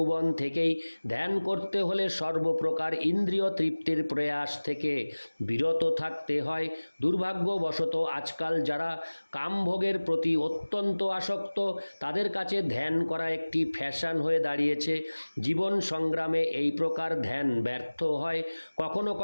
থেকেই। ধ্যান করতে হলে সর্বপ্রকার ইন্দ্রিয় তৃপ্তির প্রয়াস থেকে বিরত থাকতে হয়। দুর্ভাগ্যবশত আজকাল যারা কামভোগের প্রতি অত্যন্ত আসক্ত তাদের কাছে ধ্যান করা একটি ফ্যাশন হয়ে দাঁড়িয়েছে। জীবন সংগ্রামে এই প্রকার ধ্যান ব্যর্থ হয়। কখনো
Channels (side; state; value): both; inverted; correlation -1.00